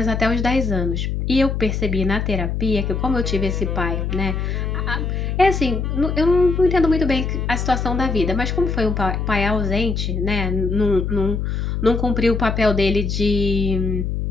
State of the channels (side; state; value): left; noise; hum, 1 dB below the sound